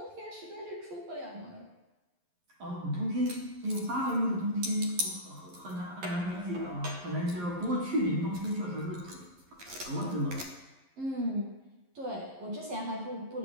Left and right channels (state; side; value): late; left; 11 ms